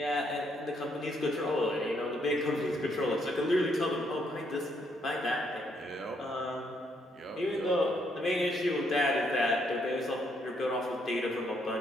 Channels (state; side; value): normal; both; correlation 0.73